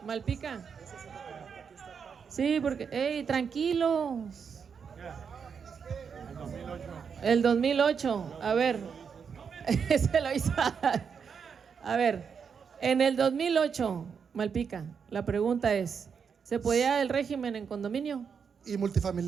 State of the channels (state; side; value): quieter; left; 6.5 dB